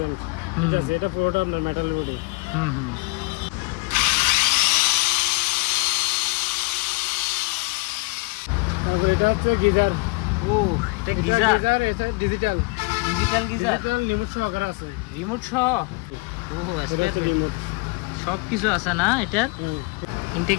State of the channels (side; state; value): right; quieter; 27.8 dB